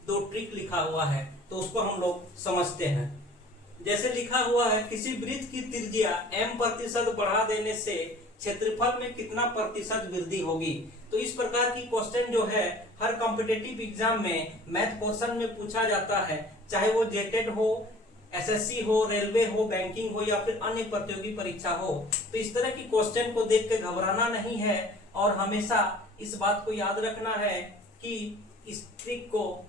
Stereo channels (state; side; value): normal; both; correlation 0.48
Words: दो ट्रिक लिखा हुआ है, तो उसको हम लोग समझते हैं। जैसे लिखा हुआ है, किसी वृत्त की त्रिज्या m% बढ़ा देने से क्षेत्रफल में कितना प्रतिशत वृद्धि होगी। तो इस प्रकार की क्वेश्चन जो है हर कॉम्पिटिटिव एग्जाम में मैथ पोर्शन में पूछा जाता है, चाहे वो जेटेड हो, एसएससी हो, रेलवे हो, बैंकिंग हो या फिर अन्य प्रतियोगी परीक्षा हो। तो इस तरह की क्वेश्चन को देख के घबराना नहीं है और हमेशा इस बात को याद रखना है कि इस ट्रिक को